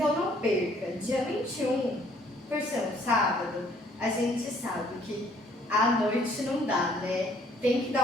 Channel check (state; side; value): normal; both; correlation 0.62